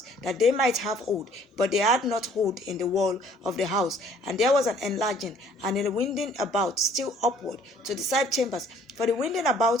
that they might have hold, but they had not hold in the wall of the house. And there was an enlarging and a winding about still upward to the side chambers, for the winding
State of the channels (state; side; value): normal; both; correlation 0.58